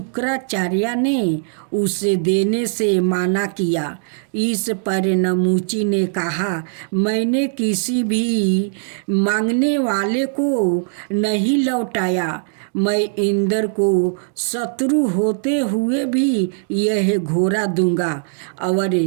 ने उसे देने से मना किया। इस पर नमूची ने कहा, मैंने किसी भी मांगने वाले को नहीं लौटाया। मैं इंद्र को शत्रु होते हुए भी यह घोड़ा दूंगा और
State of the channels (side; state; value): left; silent; digital silence